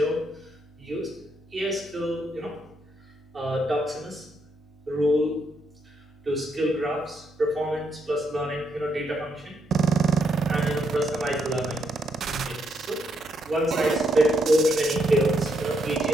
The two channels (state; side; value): normal; both; correlation 0.77